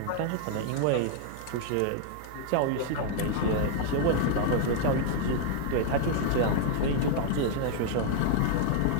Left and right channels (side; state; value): both; different; correlation 0.00